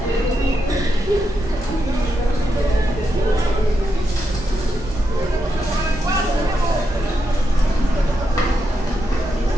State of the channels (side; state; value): both; normal; correlation 0.84